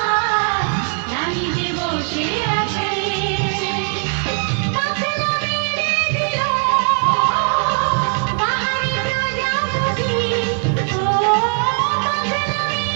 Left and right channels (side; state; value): left; quieter; 38.6 dB